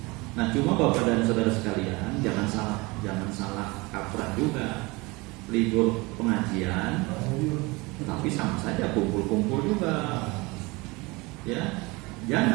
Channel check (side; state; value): left; quieter; 24.5 dB